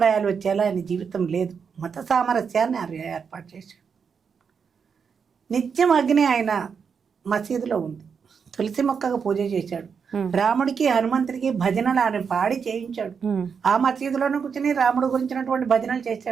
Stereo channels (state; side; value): quieter; left; 6.3 dB